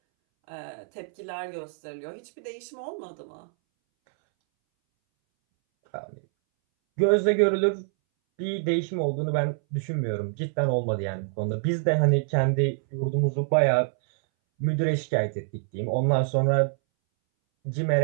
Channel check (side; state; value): left; silent; 61 dB below the other